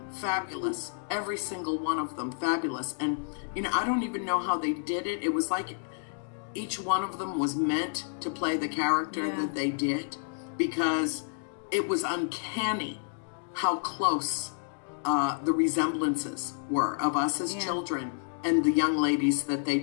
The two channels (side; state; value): right; silent; digital silence